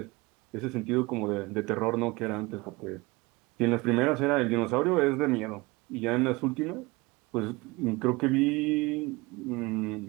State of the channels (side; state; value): left; quieter; 23.6 dB